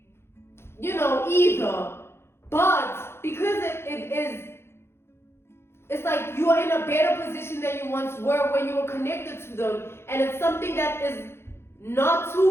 either. But because it's like you are in a better position than you once were when you were connected to them. And it's something that is not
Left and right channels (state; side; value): late; right; 0.12 ms